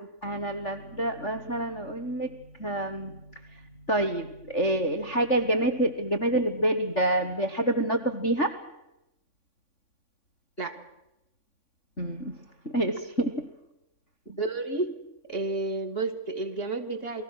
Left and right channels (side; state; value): right; late; 3.6 ms